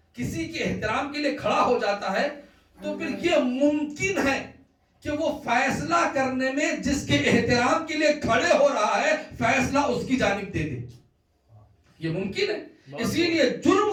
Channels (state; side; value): identical; both; correlation 1.00